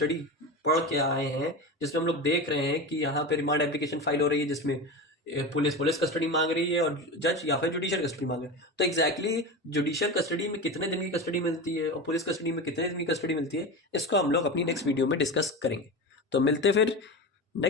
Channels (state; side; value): normal; both; correlation 0.24